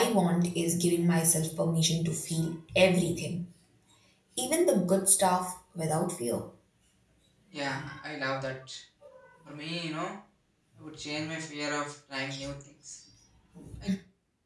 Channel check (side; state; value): both; identical; correlation 1.00